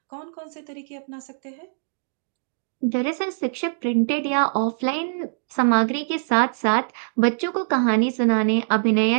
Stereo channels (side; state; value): left; silent; digital silence